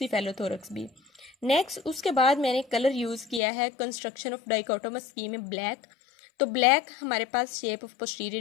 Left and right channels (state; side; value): drops out; right; at 3.4 s